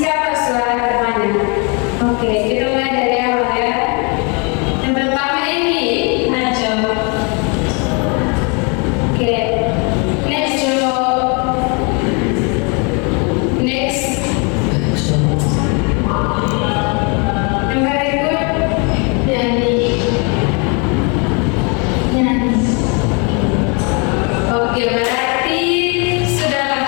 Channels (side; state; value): right; quieter; 33.4 dB